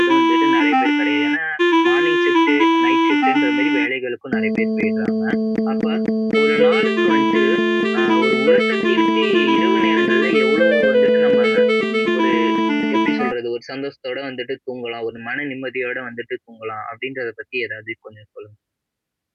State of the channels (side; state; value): both; identical; correlation 1.00